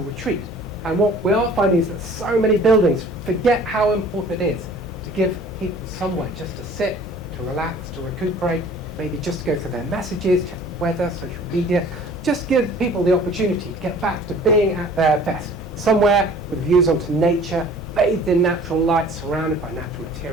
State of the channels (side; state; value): both; normal; correlation 0.49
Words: And what we are finding is that so many buildings forget how important it is to give people somewhere just to sit, to relax, to recuperate, maybe just to go through their messages, check the weather, social media. Just give people the opportunity to get back to being at their best, somewhere with views onto nature, bathed in natural light, surrounded by natural